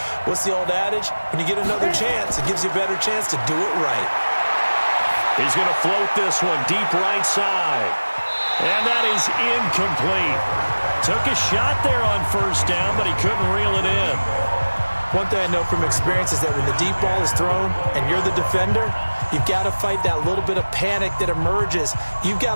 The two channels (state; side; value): inverted; both; correlation -1.00